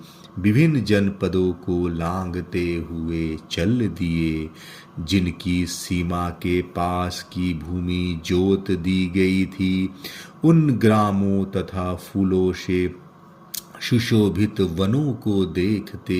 विभिन्न जनपदों को लांघते हुए चल दिए। जिनकी सीमा के पास की भूमि जोत दी गई थी, उन ग्रामों तथा फूलों से सुशोभित वनों को देखते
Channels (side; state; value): both; identical; correlation 1.00